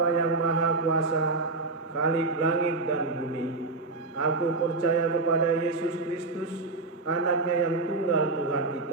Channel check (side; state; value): left; quieter; 3.5 dB